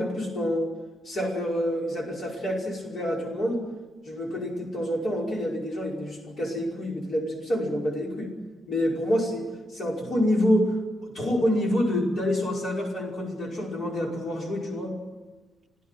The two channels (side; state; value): both; normal; correlation 0.82